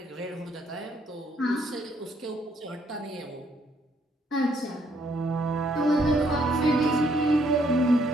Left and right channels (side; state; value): both; normal; correlation 0.69